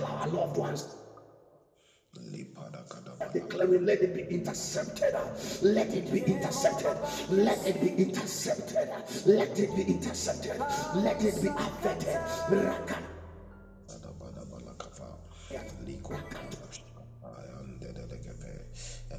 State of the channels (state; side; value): identical; both; correlation 1.00